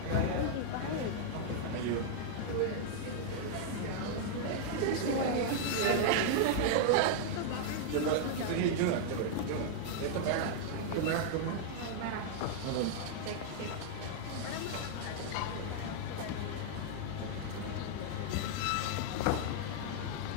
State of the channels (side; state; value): both; different; correlation -0.01